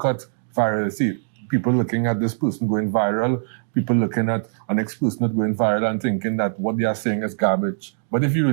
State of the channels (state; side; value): silent; left; digital silence